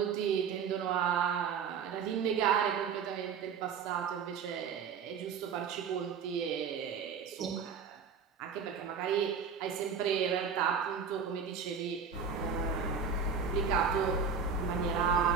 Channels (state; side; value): quieter; left; 6.2 dB